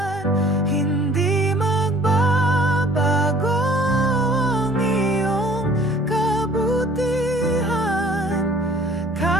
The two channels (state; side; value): normal; both; correlation 0.54